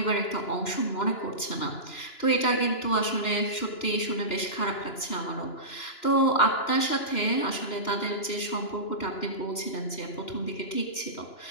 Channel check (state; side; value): late; right; 2.9 ms